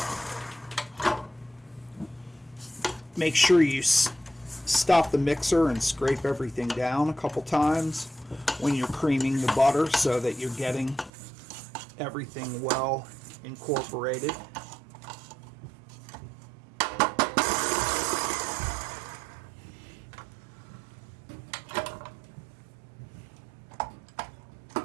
Make sure you stop the mixer and scrape everything down a couple times when you're creaming the butter, so that you're getting everything well incorporated.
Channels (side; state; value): left; drops out; at 11.1 s